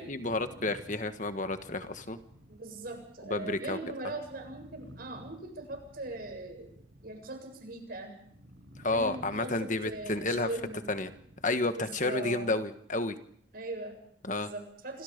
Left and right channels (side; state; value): both; normal; correlation 0.14